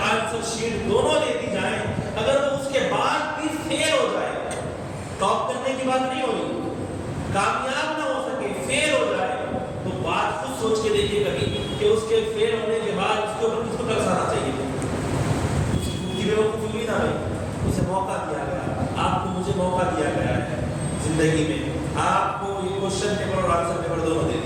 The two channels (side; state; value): both; identical; correlation 1.00